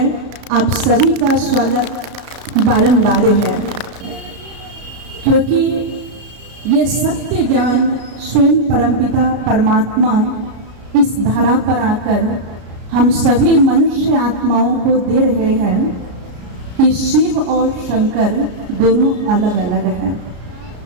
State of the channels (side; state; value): left; late; 33 ms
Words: आप सभी का स्वागत बारंबार है। क्योंकि ये सत्य ज्ञान स्वयं परमपिता परमात्मा इस धरा पर आकर हम सभी मनुष्य आत्माओं को दे रहे हैं कि शिव और शंकर दोनों अलग अलग हैं।